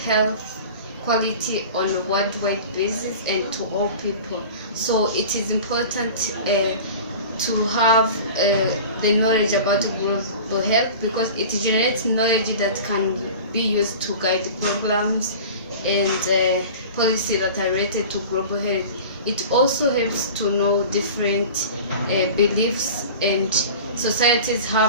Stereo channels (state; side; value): inverted; both; correlation -0.37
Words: health quality on a worldwide basis and to all people. So it is important to have the knowledge about global health, because it generates knowledge that can be used to guide programs and policy that are related to global health. It also helps to know different beliefs and societies